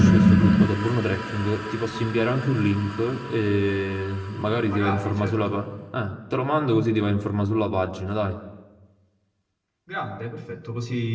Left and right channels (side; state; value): both; identical; correlation 1.00